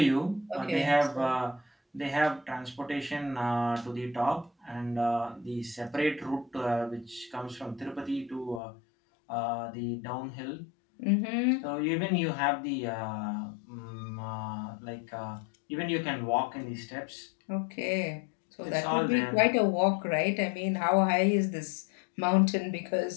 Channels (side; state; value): right; drops out; at 8.6 s